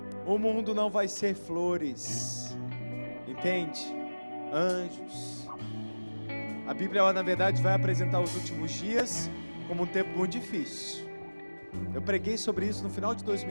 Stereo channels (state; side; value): inverted; both; correlation -1.00